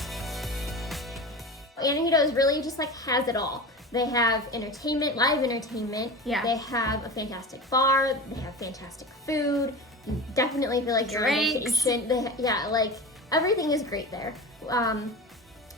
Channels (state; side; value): normal; both; correlation 0.30